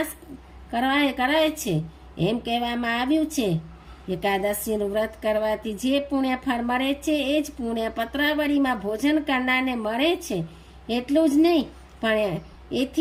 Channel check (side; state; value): both; identical; correlation 1.00